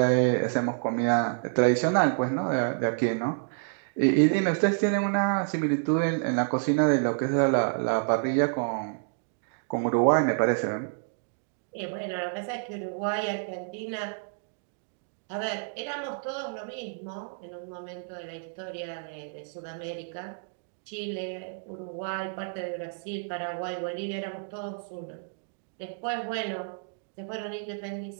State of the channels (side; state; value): left; silent; digital silence